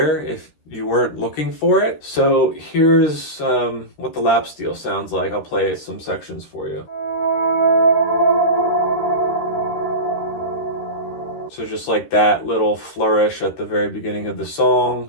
if you weren't looking for it. So here's what the lap steel sounds like. I'll play some sections for you. So just like that little flourish at the very beginning of the song,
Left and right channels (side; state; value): right; late; 13 ms